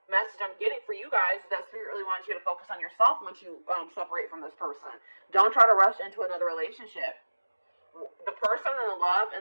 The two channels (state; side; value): inverted; both; correlation -1.00